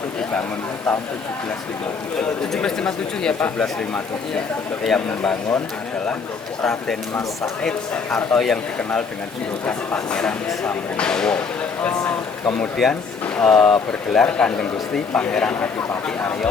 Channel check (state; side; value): quieter; right; 5.1 dB